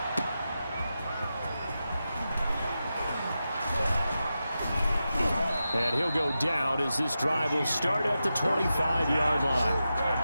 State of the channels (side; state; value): both; inverted; correlation -0.91